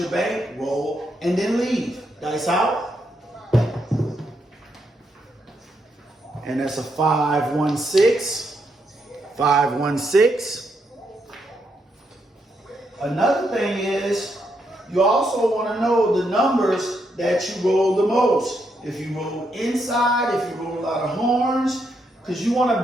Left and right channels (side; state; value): both; normal; correlation 0.79